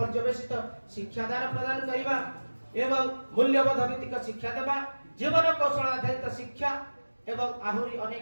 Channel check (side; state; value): both; inverted; correlation -1.00